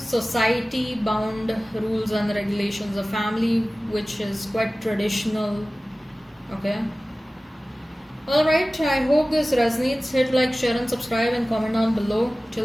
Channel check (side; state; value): both; normal; correlation 0.97